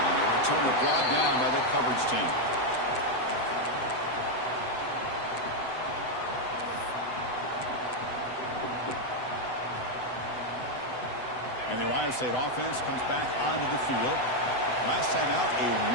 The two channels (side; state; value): right; late; 7.9 ms